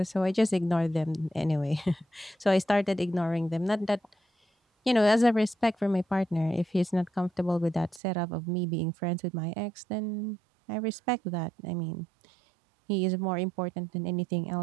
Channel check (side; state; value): left; drops out; at 8.0 s